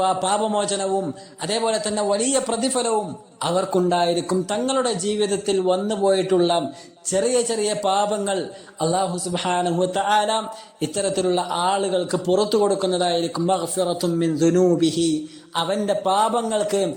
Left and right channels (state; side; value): identical; both; correlation 1.00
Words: പാപമോചനവും അതേപോലെ തന്നെ വലിയ പ്രതിഫലവും അവർക്കുണ്ടായിരിക്കും. തങ്ങളുടെ ജീവിതത്തിൽ വന്നുപോയിട്ടുള്ള ചെറിയ ചെറിയ പാപങ്ങൾ അല്ലാഹു സുബ്ഹാനഹു വ തആല ഇത്തരത്തിലുള്ള ആളുകൾക്ക് പുറത്തു കൊടുക്കുന്നതായിരിക്കും. മഗ്ഫിറത്തും മിൻ ദുനൂബിഹി, അവന്റെ പാപങ്ങൾക്ക്